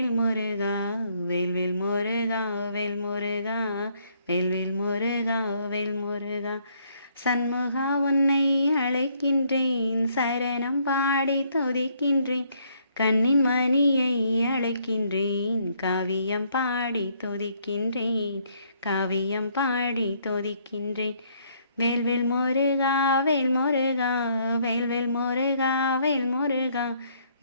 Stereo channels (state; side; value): inverted; both; correlation -0.68